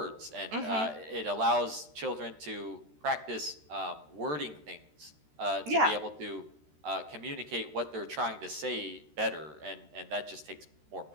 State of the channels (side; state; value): left; late; 13 ms